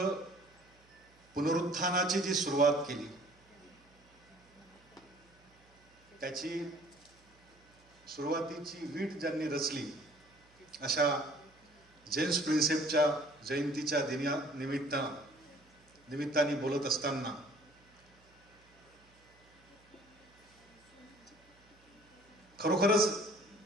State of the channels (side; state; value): right; noise; hum, 30 dB below the sound